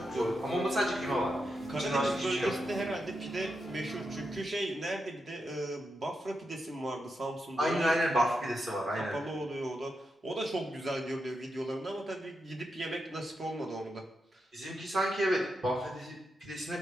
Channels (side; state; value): both; normal; correlation 0.86